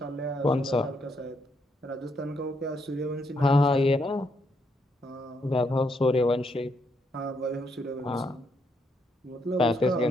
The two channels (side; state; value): both; normal; correlation 0.76